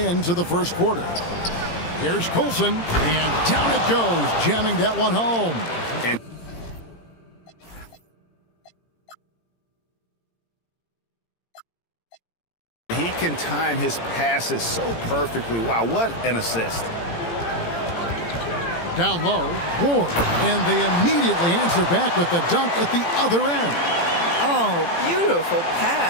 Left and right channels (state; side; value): late; right; 17 ms